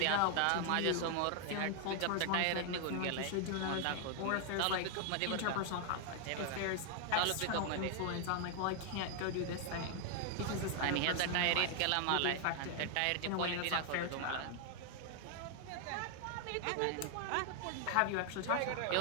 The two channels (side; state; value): both; different; correlation 0.00